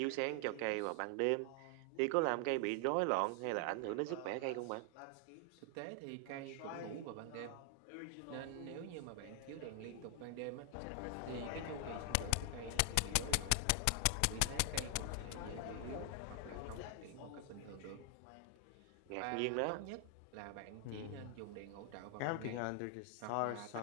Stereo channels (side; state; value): both; different; correlation 0.00